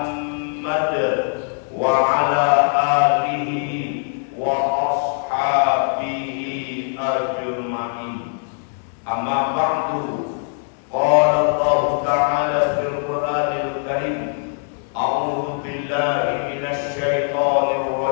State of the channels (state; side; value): silent; right; digital silence